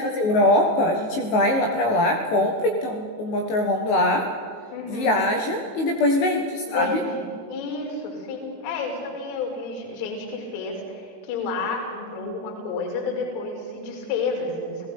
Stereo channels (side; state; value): right; late; 19 ms